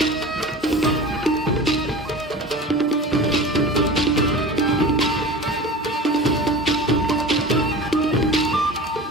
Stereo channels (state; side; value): normal; both; correlation 0.34